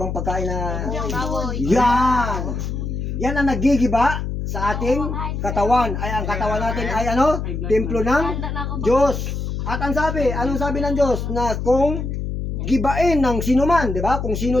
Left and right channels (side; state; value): left; noise; hum, 4 dB below the sound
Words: pagkain na... Yan! Yan ang nagigiba sa ating katawan. Ay, ang katawan natin ay ano? Templo ng Diyos. At ang sabi, anong sabi ng Diyos? Na kung gibain ng sino man, di ba? Kung sino